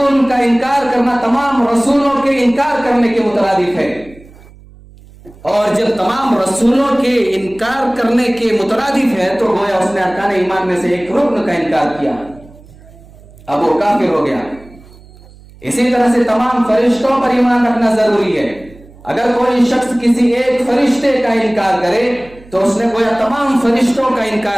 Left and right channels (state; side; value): noise; right; hum, 23 dB below the sound